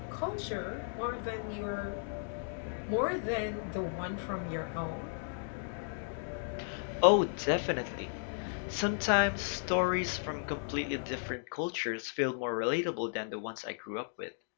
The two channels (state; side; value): silent; right; digital silence